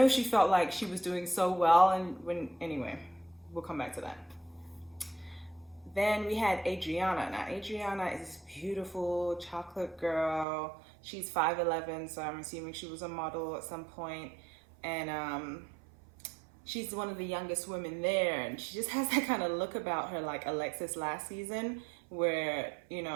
she felt like she was doing so well. And anyway, we'll come back to that. Then we had Adriana. Now, Adriana is this beautiful chocolate girl. She's 5'11", so I'm assuming she was a model at some point. And she's one of the youngest women there, and she just has that kind of look about her like Alexis last season, where, you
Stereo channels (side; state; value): left; drops out; at 10.5 s